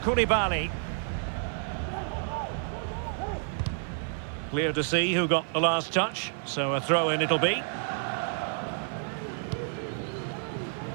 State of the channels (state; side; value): silent; left; 58 dB below the other